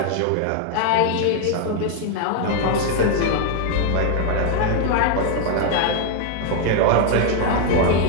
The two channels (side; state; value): both; different; correlation 0.00